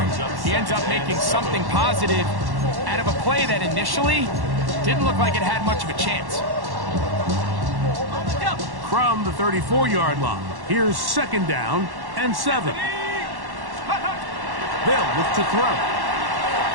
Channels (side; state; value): left; late; 1.1 ms